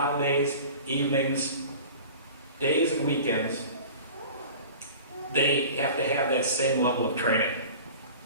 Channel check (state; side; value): inverted; both; correlation -0.40